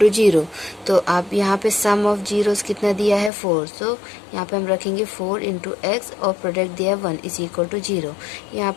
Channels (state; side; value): drops out; right; at 3.3 s